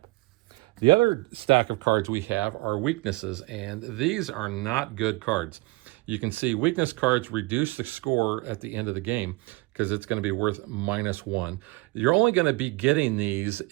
The other stack of cards we have are weaknesses, and these are not good cards. you can see weakness cards reduce the score at the end of the game because it's going to be worth -1. You're only going to be getting these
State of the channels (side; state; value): left; quieter; 23.8 dB